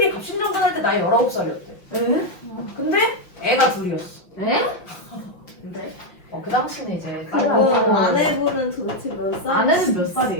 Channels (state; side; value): late; right; 5.9 ms